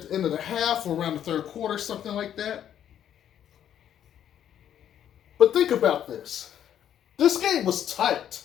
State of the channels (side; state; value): right; quieter; 10.1 dB